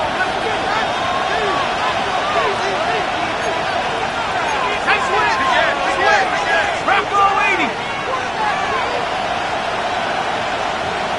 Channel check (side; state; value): both; identical; correlation 1.00